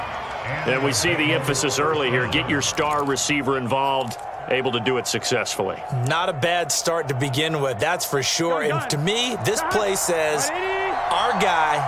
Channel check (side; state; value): both; identical; correlation 1.00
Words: And we see the emphasis early here. Get your star receiver involved. Able to do it successfully. Not a bad start to begin with, that's for sure. And to me, this play says our